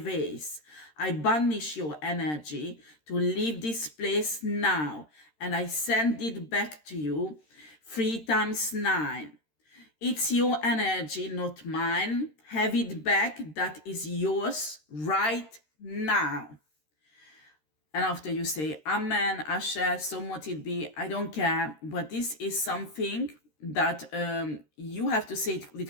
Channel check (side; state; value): right; late; 13 ms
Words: I banish your energy to leave this place now, and I send it back to you 3 times 9. It's your energy, not mine. Have it back. That is yours right now. And after you say, Amen, Asher, so mote it be, I don't care. But this is something that you have to say it